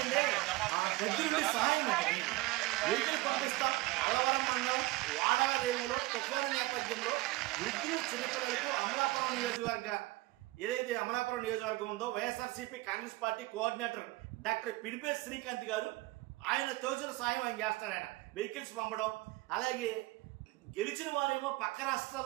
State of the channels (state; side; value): quieter; left; 20.9 dB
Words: దగ్గరుండి సహాయం వెహికల్ పంపిస్తాం. అలవరం మండలం వాడాల రేవులో తుఫాను నేపథ్యంలో వృద్ధులు, చిన్నపిల్లలకు అమలాపురం నియోజకవర్గ ఏదైతే అమలాపురం నియోజకవర్గం ఉందో YSRCP Congress party coordinator doctor Pinipe Srikanth గారు ఆయన తోచిన సాయం ఆయన చేస్తాడు. ఆయన వెహికల్స్ పంపడం, అలాగే గెలిచిన వారేమో పక్క